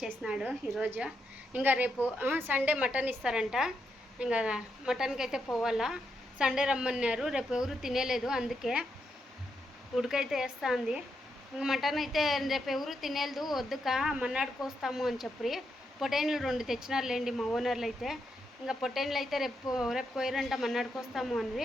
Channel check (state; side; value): normal; both; correlation 0.82